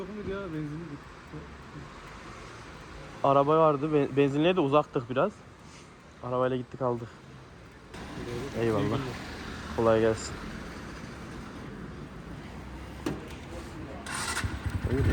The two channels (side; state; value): both; identical; correlation 1.00